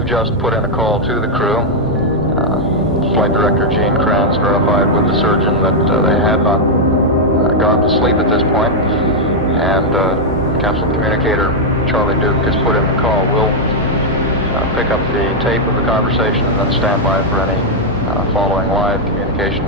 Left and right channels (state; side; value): normal; both; correlation -0.03